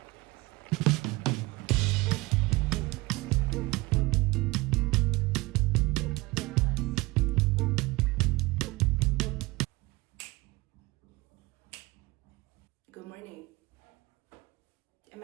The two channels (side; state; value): left; quieter; 22.5 dB